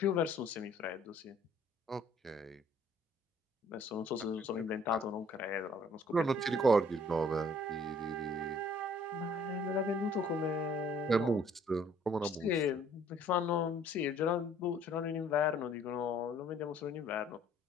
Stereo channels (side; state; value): both; normal; correlation 0.58